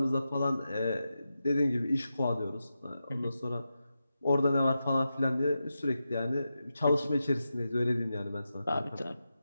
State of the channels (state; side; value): inverted; both; correlation -0.90